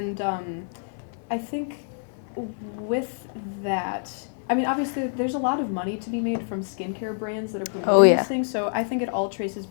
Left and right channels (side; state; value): right; silent; 61 dB below the other